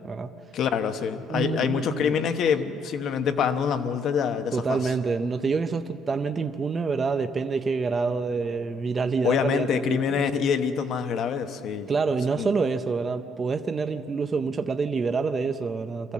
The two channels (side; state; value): both; normal; correlation 0.70